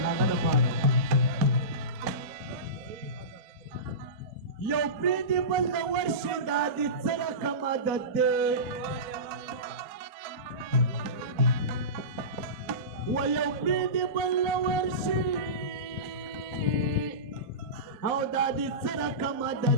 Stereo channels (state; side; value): late; left; 4.0 ms